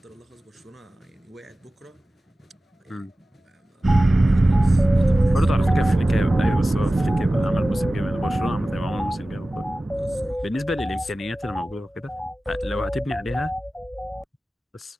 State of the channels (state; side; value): normal; both; correlation 0.96